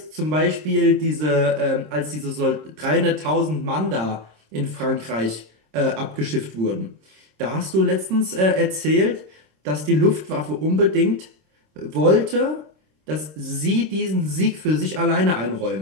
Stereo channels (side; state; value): left; late; 26 ms